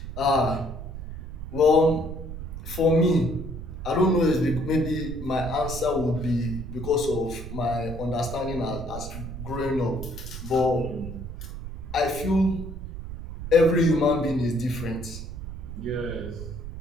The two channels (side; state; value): right; noise; rumble, 9 dB below the sound